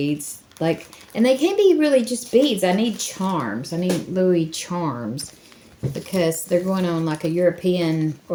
like, and they can't be really just beads. I need charms. I need Louis charms, because they're going on like a European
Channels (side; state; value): both; identical; correlation 1.00